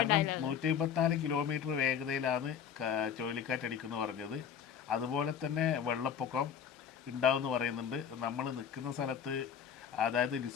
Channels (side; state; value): right; quieter; 8.0 dB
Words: 154 കിലോമീറ്റർ വേഗതയിലാണ് ചുഴലിക്കാറ്റടിക്കുന്നു പറഞ്ഞത്. അതുപോലെ തന്നെ വെള്ളപ്പൊക്കം ഉണ്ടാവുമെന്ന് പറയുന്നുണ്ട്. നമ്മൾ നിൽക്കുന്ന സ്ഥലത്ത്, അതായത്